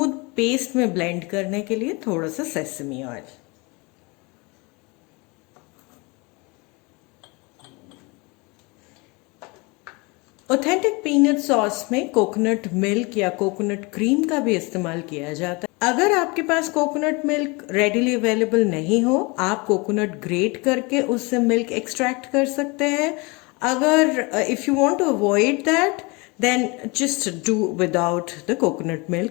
पेस्ट में ब्लेंड करने के लिए थोड़ा सा sesame oil. Authentic peanut sauce में कोकोनट मिल्क या कोकोनट क्रीम का भी इस्तेमाल किया जाता है। अगर आपके पास कोकोनट मिल्क रेडिली अवेलेबल नहीं हो, आप कोकोनट ग्रेट करके उससे मिल्क एक्सट्रैक्ट कर सकते हैं। अगर if you want to avoid that, then just do without the coconut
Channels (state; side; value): quieter; right; 27.3 dB